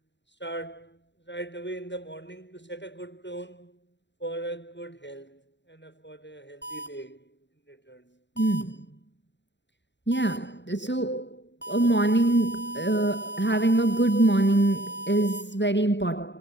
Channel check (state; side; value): late; right; 0.52 ms